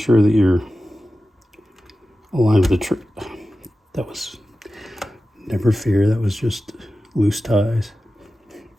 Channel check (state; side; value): normal; both; correlation 0.94